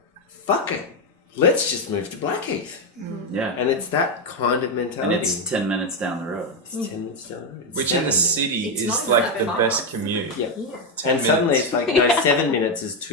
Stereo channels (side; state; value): both; normal; correlation 0.06